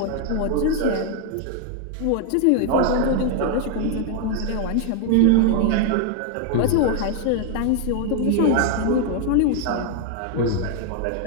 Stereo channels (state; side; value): different; both; correlation 0.00